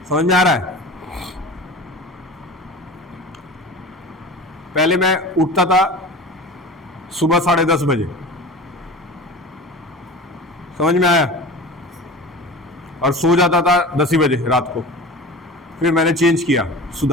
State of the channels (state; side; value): normal; both; correlation 0.35